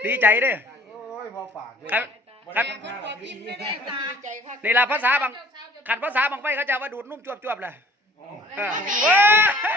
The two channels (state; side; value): normal; both; correlation 0.53